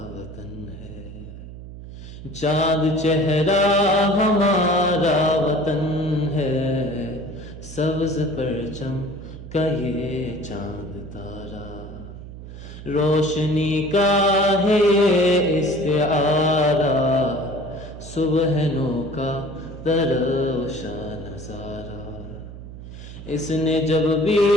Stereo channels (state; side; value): noise; right; hum, 13 dB below the sound